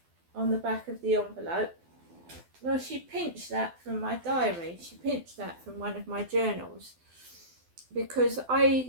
on the back of the envelope. Well, she pinched that from my diary. She pinched that from one of my journals. Because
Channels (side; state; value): left; late; 12 ms